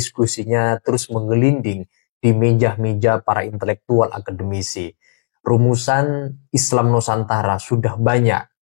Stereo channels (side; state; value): right; silent; digital silence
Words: terus menggelinding di meja-meja para intelektual akademisi. Rumusan Islam Nusantara sudah banyak